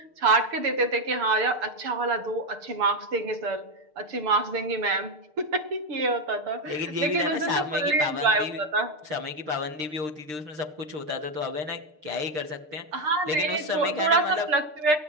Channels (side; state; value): left; late; 6.6 ms